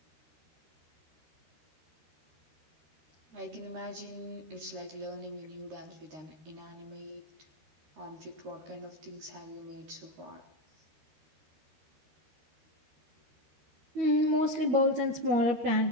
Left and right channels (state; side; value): late; left; 13 ms